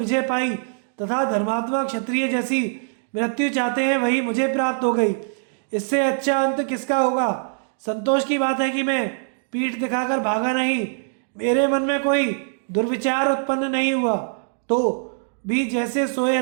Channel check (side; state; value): left; silent; digital silence